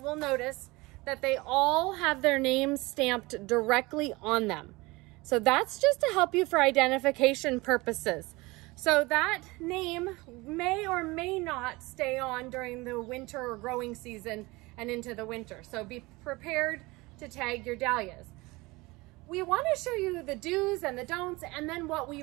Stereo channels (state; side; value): quieter; left; 22.7 dB